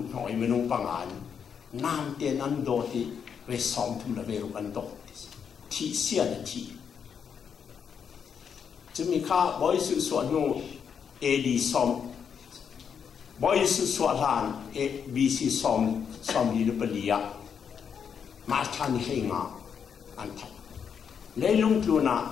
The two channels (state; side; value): quieter; right; 7.2 dB